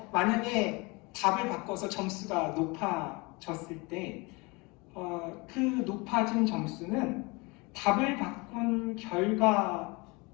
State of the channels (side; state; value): right; quieter; 26.7 dB